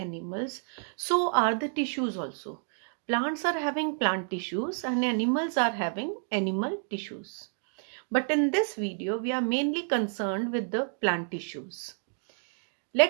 so are the tissues also. Plants are having plant tissues and animals are having animal tissues. But in this video, we are mainly concerned with the plant tissues.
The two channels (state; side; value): silent; left; digital silence